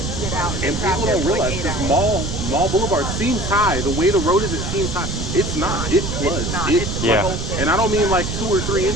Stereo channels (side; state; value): right; noise; rumble, 4 dB below the sound